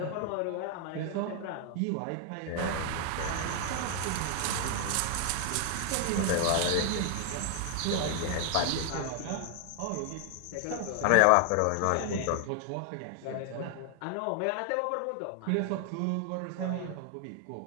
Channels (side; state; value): both; different; correlation 0.00